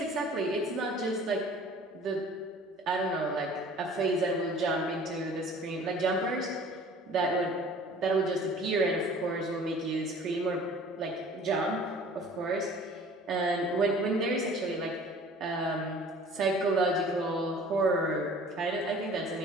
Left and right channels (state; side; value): normal; both; correlation 0.48